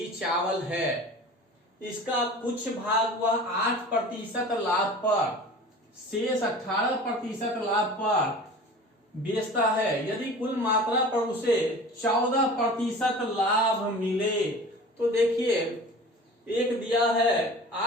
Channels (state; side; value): normal; both; correlation 0.40